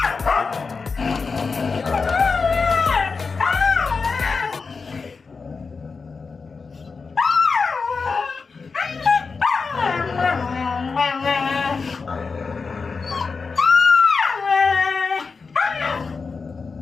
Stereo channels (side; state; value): right; quieter; 4.7 dB